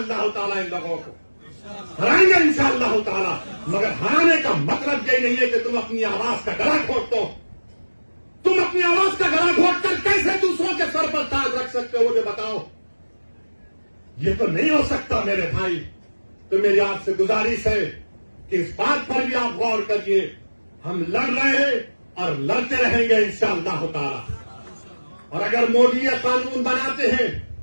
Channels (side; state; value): both; inverted; correlation -1.00